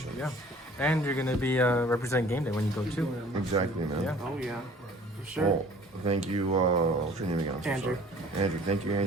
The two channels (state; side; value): normal; both; correlation 0.50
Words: Yeah. And you're gonna be representing Game Day when you go too. Exactly, man. Yeah. Oh yeah, for sure. Well, thank you. What's your name again? I'm so Andrew. sorry. Andrew. Thank you,